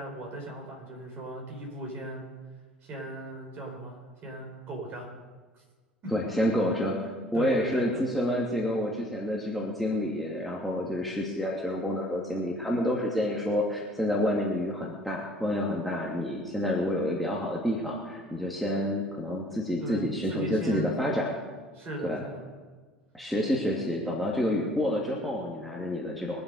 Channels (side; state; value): both; normal; correlation 0.56